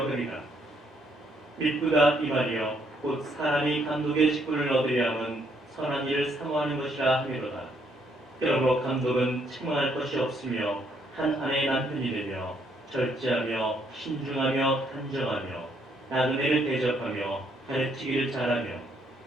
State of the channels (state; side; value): normal; both; correlation 0.71